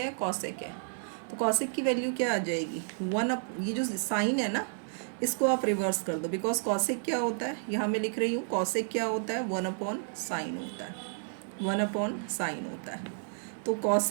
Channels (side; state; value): left; silent; digital silence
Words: है? कॉसेक है। तो कॉसेक की वैल्यू क्या आ जाएगी, ये जो साइन है ना इसको आप रिवर्स कर दो, बिकॉज कॉसेक क्या होता है, यहाँ मैं लिख रही हूँ कॉसेक क्या होता है, 1/sin होता है, 1/sin होता है। तो